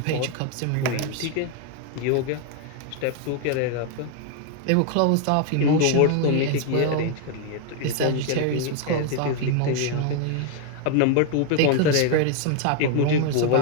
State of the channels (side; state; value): both; different; correlation 0.00